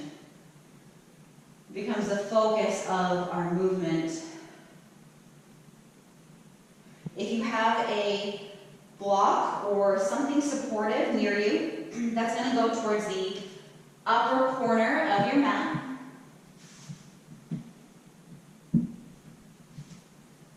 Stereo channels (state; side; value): identical; both; correlation 1.00